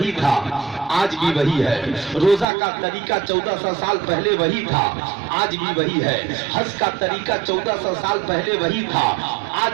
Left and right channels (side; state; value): left; drops out; at 2.5 s